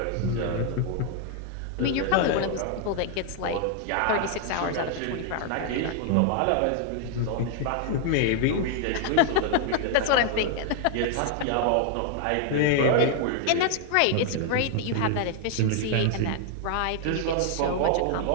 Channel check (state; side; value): different; both; correlation 0.00